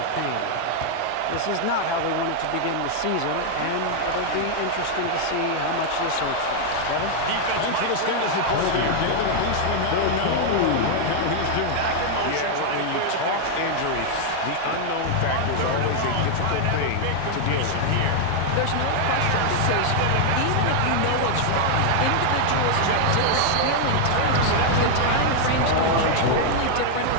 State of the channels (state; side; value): different; both; correlation 0.00